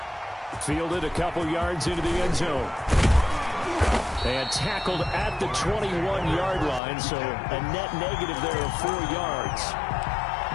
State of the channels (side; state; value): right; drops out; at 6.8 s